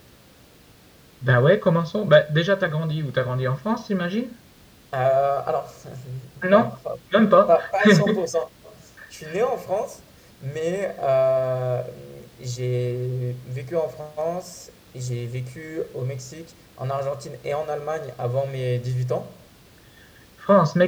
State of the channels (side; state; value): both; identical; correlation 1.00